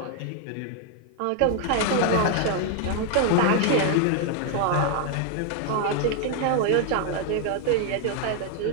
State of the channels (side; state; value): both; different; correlation 0.00